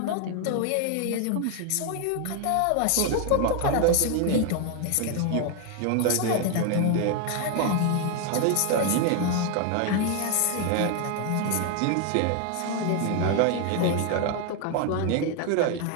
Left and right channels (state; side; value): different; both; correlation 0.01